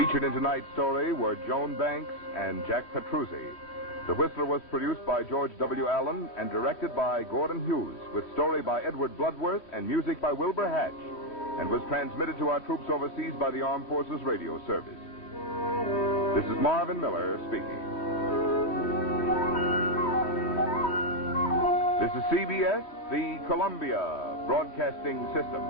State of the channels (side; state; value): right; late; 3.1 ms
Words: in tonight's story were Joan Banks and Jack Petruzzi. The Whistler was produced by George W. Allen and directed by Gordon Hughes, with story by Edward Bloodworth and music by Wilbur Hatch, and was transmitted to our troops overseas by the Armed Forces Radio Service. This is Marvin Miller speaking. This is CBS, the Columbia Broadcasting